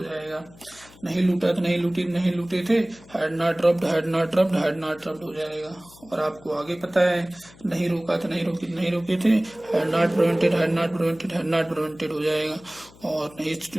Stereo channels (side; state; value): left; noise; hum, 24 dB below the sound